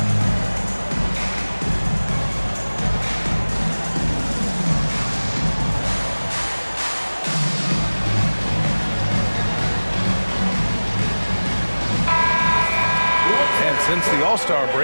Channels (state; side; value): inverted; both; correlation -1.00